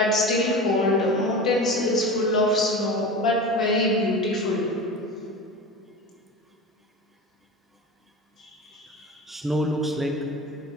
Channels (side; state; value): both; normal; correlation 0.30